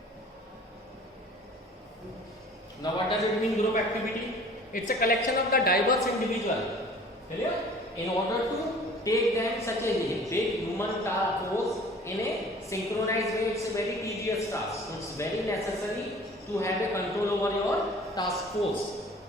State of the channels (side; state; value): both; normal; correlation 0.48